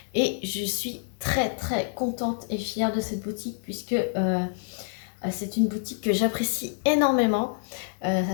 et je suis très contente et fière de cette boutique puisque c'est une boutique que j'apprécie énormément.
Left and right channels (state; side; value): silent; right; digital silence